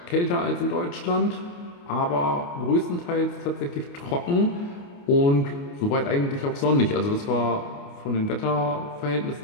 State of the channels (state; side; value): late; right; 29 ms